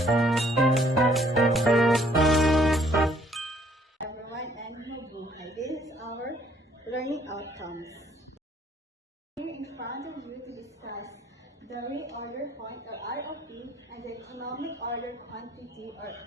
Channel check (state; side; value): normal; both; correlation 0.63